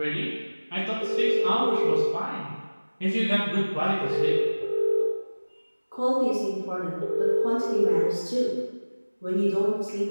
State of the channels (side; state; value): both; inverted; correlation -1.00